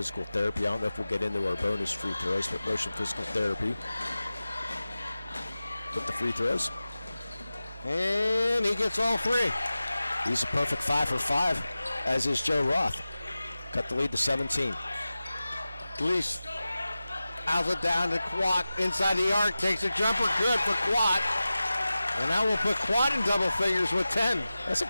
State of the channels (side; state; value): both; inverted; correlation -0.95